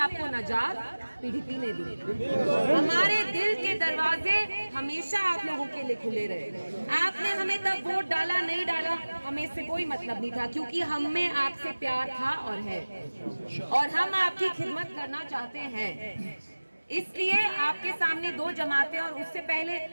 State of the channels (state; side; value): inverted; both; correlation -1.00